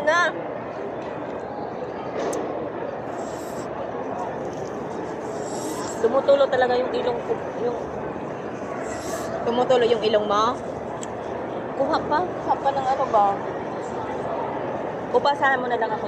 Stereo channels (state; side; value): identical; both; correlation 1.00